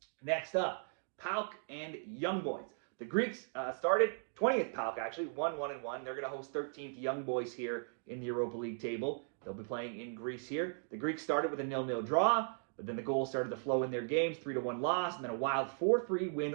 Next up, PAOK and Young Boys. The Greeks started 20th PAOK, actually, 1-1-1. They're going to host 13th Young Boys here in the Europa League table. They'll be playing in Greece here. The Greeks started with a 0-0 draw, but then the goals started to flow in their games, 3-1 loss, and then a wild 4-3 win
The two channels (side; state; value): left; silent; digital silence